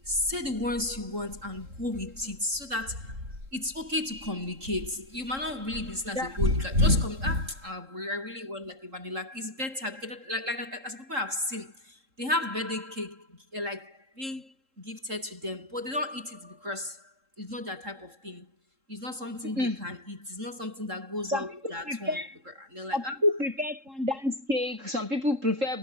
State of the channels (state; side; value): late; left; 3.7 ms